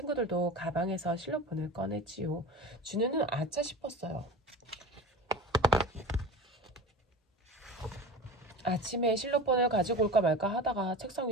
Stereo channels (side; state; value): both; normal; correlation 0.33